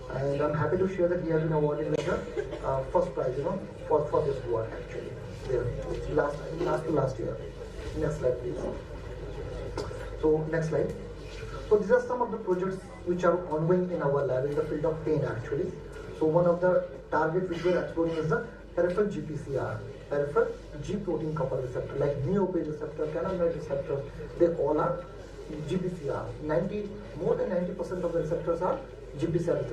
And I'm happy to share that he has been awarded with the first prize, for this work actually. There, last year. Next slide, please. So next slide. So these are some of the projects which are ongoing in our lab in the field of pain actually. So one of the targets which we are exploring is the peripheral GPCR, peripheral G protein coupled receptor, like neopage receptor, cannabinoid receptor. They all are GPCR. More than 90% of the receptors are GPCR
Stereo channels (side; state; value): both; identical; correlation 1.00